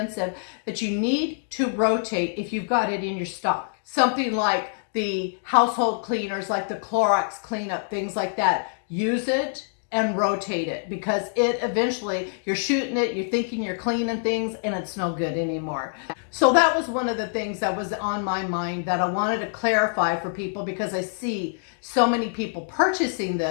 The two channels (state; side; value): silent; right; digital silence